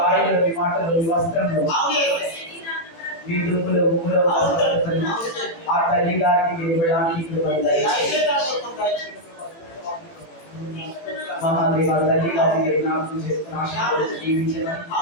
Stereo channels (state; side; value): late; right; 18 ms